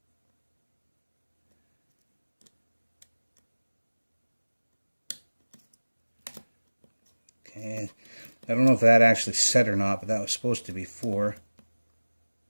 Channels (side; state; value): both; inverted; correlation -1.00